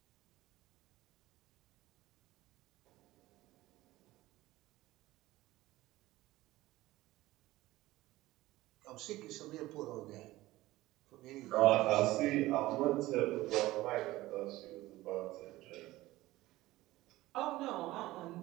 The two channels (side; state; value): left; quieter; 17.6 dB